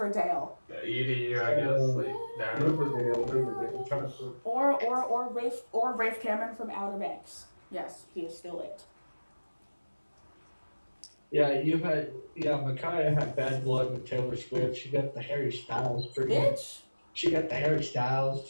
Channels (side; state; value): both; inverted; correlation -1.00